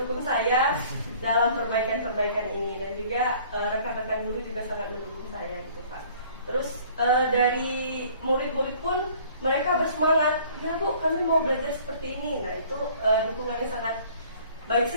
saya dalam perbaikan-perbaikan ini, dan juga rekan-rekan guru juga sangat mendukung saya gitu Pak. Terus dari murid-murid pun mereka bersemangat, ya Bu kami mau belajar seperti ini. Nah itu dukungannya sangat baik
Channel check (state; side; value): inverted; both; correlation -0.53